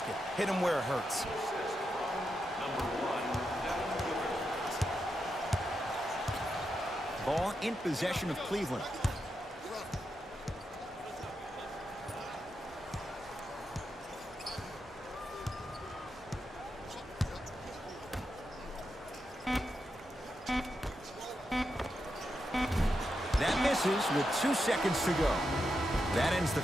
Hit him where it hurts. Ball in possession of Cleveland. That misses with 2 seconds to go. That ends the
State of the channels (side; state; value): both; normal; correlation 0.86